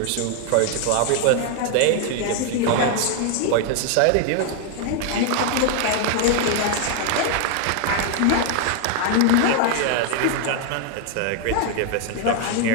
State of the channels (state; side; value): different; both; correlation 0.00